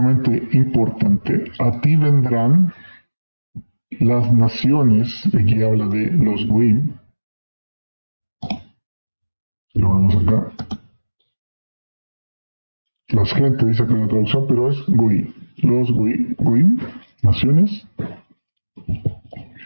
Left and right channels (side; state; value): both; inverted; correlation -1.00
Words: importante. A ti vendrán las naciones, aquí habla de los Goim, lo vemos acá. Las gente dice que la traducción, pero es Goim. Los Goim, naciones.